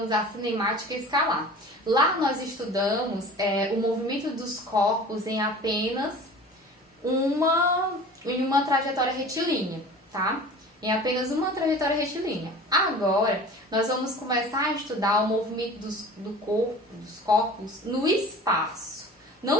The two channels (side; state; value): both; normal; correlation 0.41